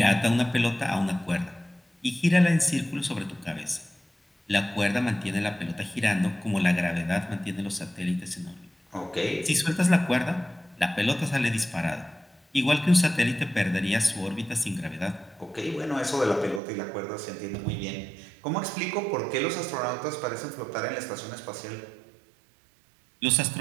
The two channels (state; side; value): drops out; left; at 16.6 s